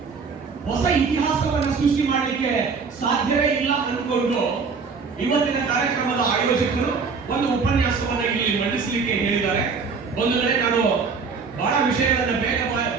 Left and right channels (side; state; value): left; quieter; 5.1 dB